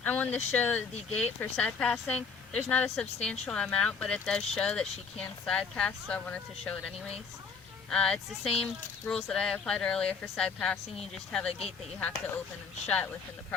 I wanted to show the gate for side passing. There's not a substantial amount, but it does show that she can side pass, so I wanted to show it anyways. It's the same rules that I applied earlier for side passing. You just have a gate that you have to open and shut within the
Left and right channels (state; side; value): quieter; right; 5.5 dB